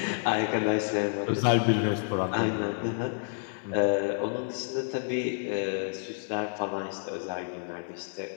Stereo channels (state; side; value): silent; right; 58 dB below the other